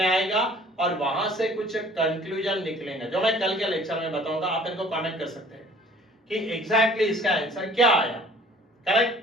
आएगा और वहां से कुछ कंक्लूजन निकलेंगे जो मैं कल के लेक्चर में बताऊंगा। आप इनको कमेंट कर सकते हैं कि एग्जैक्टली इसका आंसर क्या आया। करेक्ट?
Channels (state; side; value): normal; both; correlation 0.52